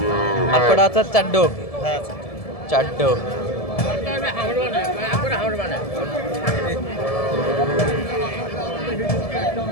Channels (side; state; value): right; late; 1.7 ms